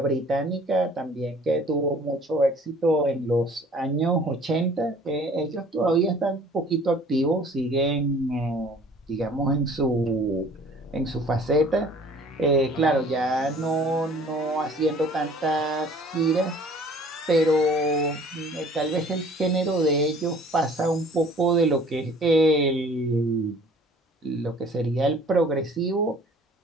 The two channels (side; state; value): both; normal; correlation 0.51